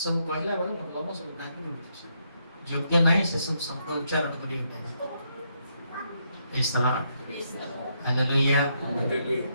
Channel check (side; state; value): both; inverted; correlation -0.77